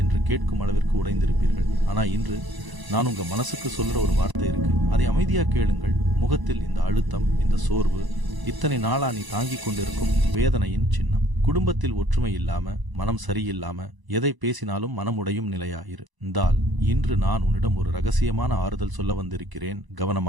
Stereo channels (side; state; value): left; late; 1.0 ms